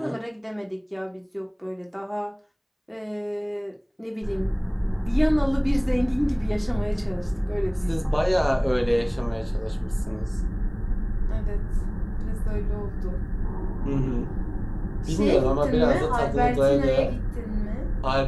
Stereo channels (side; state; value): both; identical; correlation 1.00